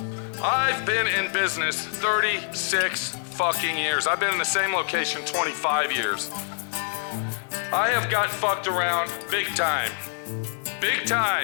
I've been in business 36 fucking years. I've been in the same location 25 years. I have got fucked around big time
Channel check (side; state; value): right; silent; 61 dB below the other